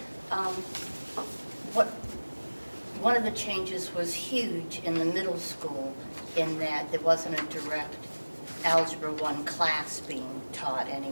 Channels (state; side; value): inverted; both; correlation -1.00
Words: Mm-hmm. One of the changes was huge in the middle school in that there wasn't a direct Algebra 1 class being taught